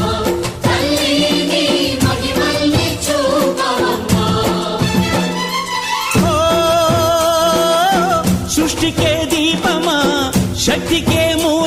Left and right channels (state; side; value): identical; both; correlation 1.00